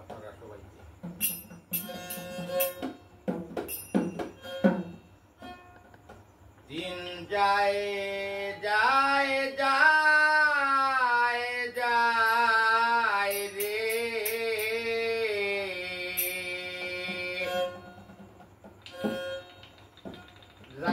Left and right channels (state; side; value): identical; both; correlation 1.00